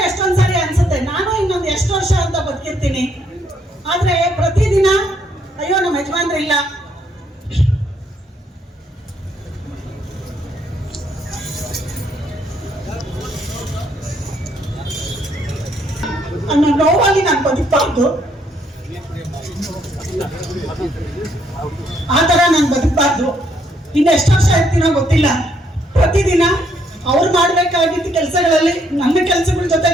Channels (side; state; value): both; normal; correlation 0.71